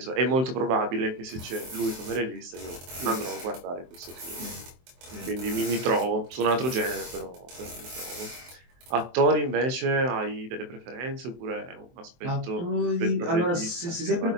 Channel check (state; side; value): late; left; 23 ms